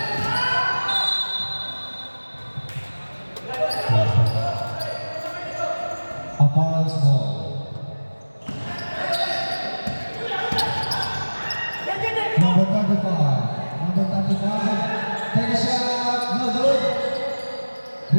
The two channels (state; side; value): inverted; both; correlation -1.00